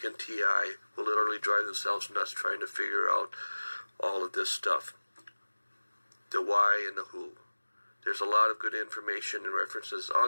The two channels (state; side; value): inverted; both; correlation -1.00